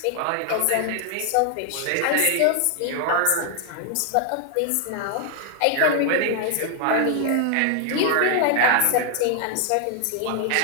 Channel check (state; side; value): different; both; correlation 0.00